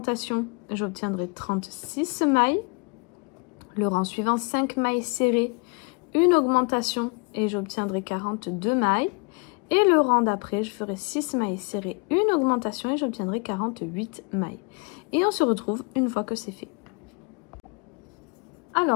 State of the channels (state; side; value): quieter; right; 33.4 dB